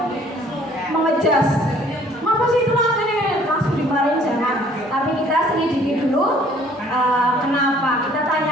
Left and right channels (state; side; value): normal; both; correlation 0.57